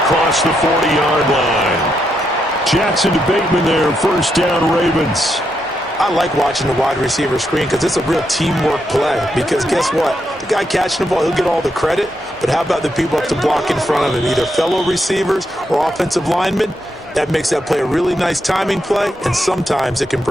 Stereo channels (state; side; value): normal; both; correlation 0.81